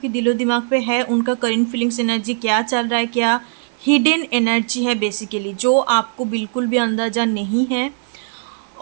दिलो दिमाग पे है उनका करंट फीलिंग्स एनर्जी क्या चल रहा है, क्या हिडन एनर्जी है बेसिकली जो आपको बिल्कुल भी अंदाज़ा नहीं है,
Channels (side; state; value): left; silent; digital silence